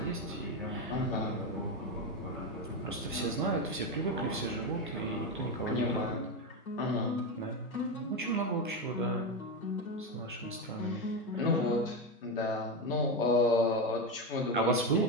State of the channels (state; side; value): normal; both; correlation 0.13